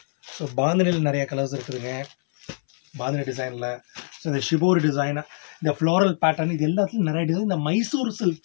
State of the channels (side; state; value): right; silent; 60 dB below the other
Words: ஸோ பாந்தினியில் நிறைய கலர்ஸ் இருக்குதுங்க, பாந்தினி டிசைனில். ஸோ இந்த ஷிபோரி டிசைன், இந்த ஃப்ளோரல் பேட்டர்ன், இது எல்லாத்துலையும் நிறைய டிசைன் இந்த மைசூர்